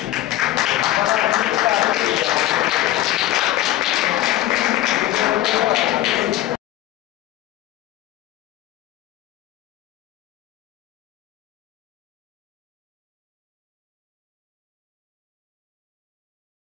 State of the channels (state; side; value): quieter; right; 14.6 dB